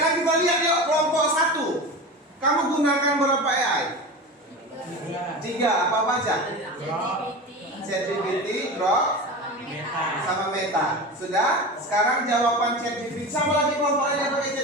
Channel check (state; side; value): normal; both; correlation 0.28